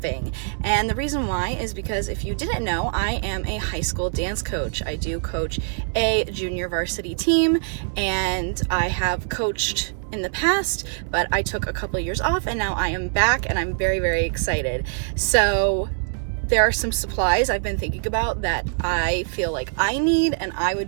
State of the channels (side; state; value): left; silent; digital silence